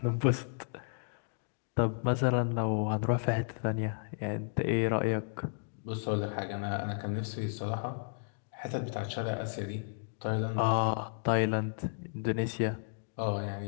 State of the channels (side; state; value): right; silent; digital silence